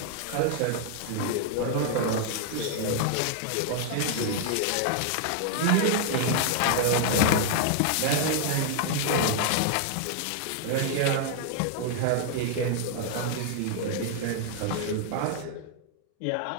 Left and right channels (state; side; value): different; both; correlation 0.00